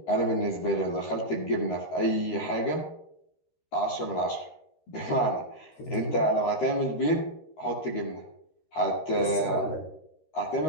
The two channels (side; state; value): right; late; 13 ms